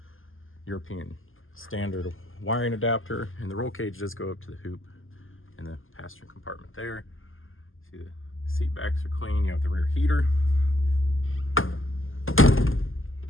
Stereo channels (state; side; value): late; right; 0.59 ms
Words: European standard wiring adapter, and the roll cage does go up to the hoop in the passenger compartment there. See the seat backs are clean. You have the rear heater.